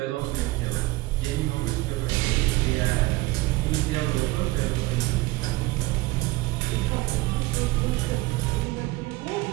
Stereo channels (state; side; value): quieter; left; 20.3 dB